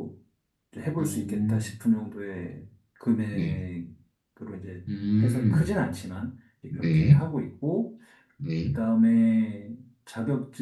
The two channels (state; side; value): identical; both; correlation 1.00